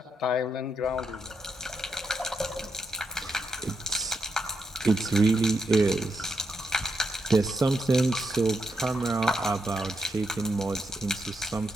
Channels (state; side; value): normal; both; correlation 0.82